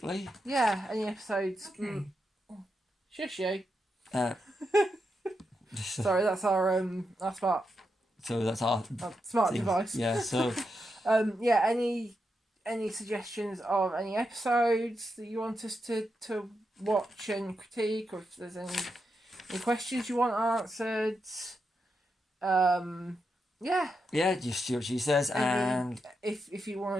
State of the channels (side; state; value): both; normal; correlation 0.85